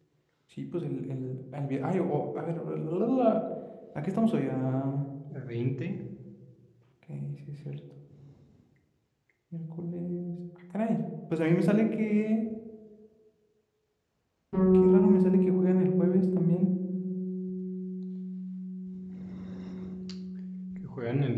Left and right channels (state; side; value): identical; both; correlation 1.00